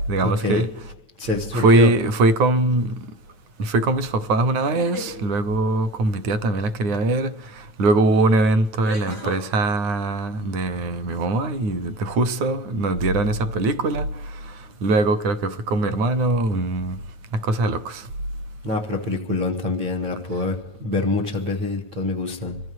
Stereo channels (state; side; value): late; left; 9.2 ms